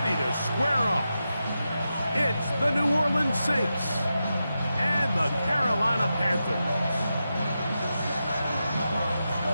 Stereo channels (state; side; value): inverted; both; correlation -0.89